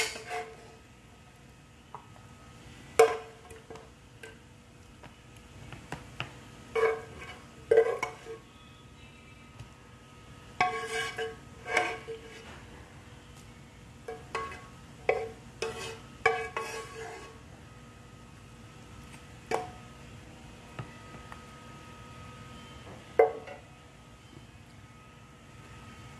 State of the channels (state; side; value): identical; both; correlation 1.00